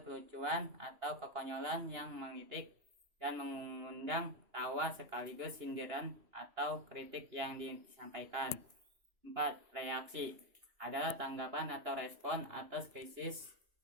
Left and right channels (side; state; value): left; late; 2.9 ms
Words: kelucuan atau kekonyolan yang mengitik dan mengundang tawa sekaligus sindiran atau kritik yang disampaikan. 4. Reaksi adalah tanggapan atau respon atas krisis